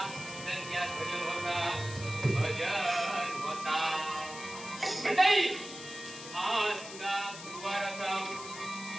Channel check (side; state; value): left; noise; hiss, 12 dB below the sound